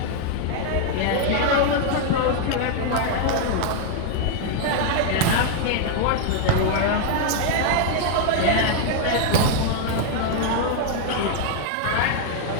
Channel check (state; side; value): different; both; correlation 0.00